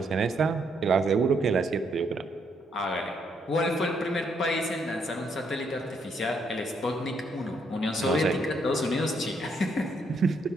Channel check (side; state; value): both; normal; correlation 0.74